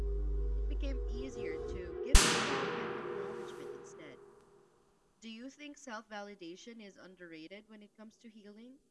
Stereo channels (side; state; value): both; identical; correlation 1.00